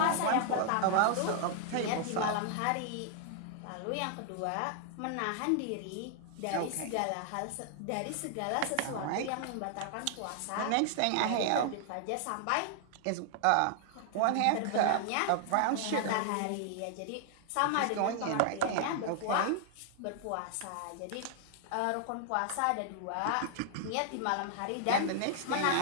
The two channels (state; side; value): different; both; correlation 0.00